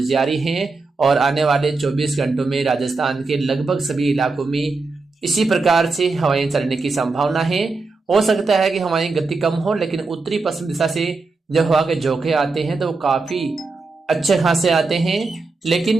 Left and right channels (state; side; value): quieter; left; 3.8 dB